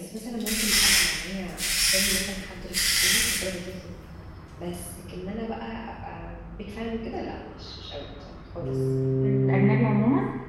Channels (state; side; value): identical; both; correlation 1.00